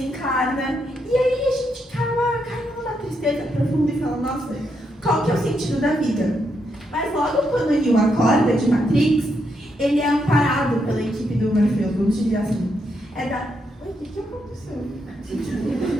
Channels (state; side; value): normal; both; correlation 0.79